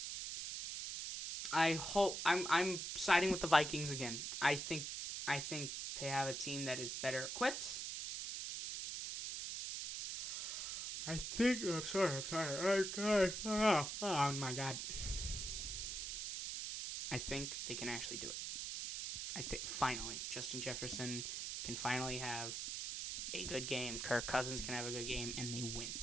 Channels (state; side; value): noise; right; hiss, 4 dB below the sound